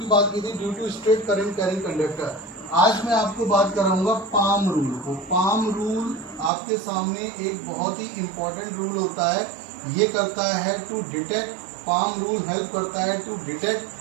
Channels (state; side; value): drops out; left; at 6.5 s